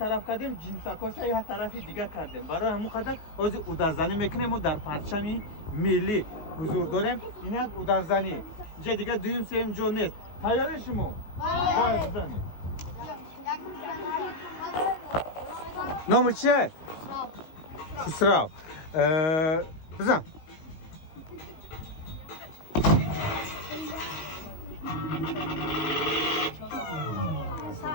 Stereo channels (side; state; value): right; late; 19 ms